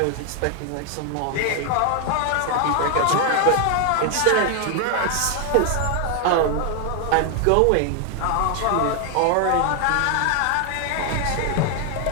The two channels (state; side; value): different; both; correlation 0.00